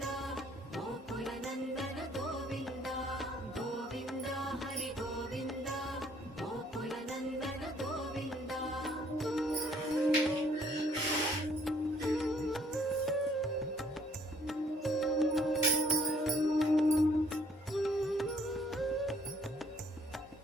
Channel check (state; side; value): normal; both; correlation 0.62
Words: ಗೋಕುಲ ನಂದನ ಗೋವಿಂದ ಗೋವಿಂದ ಹರಿ ಗೋವಿಂದ ಗೋಕುಲ ನಂದನ ಗೋವಿಂದ